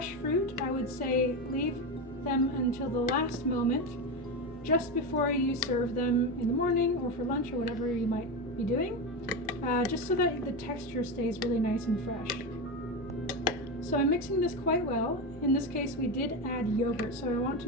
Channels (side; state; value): both; normal; correlation 0.16